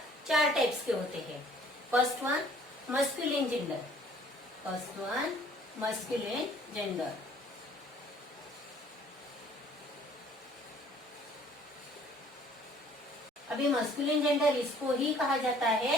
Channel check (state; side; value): normal; both; correlation 0.56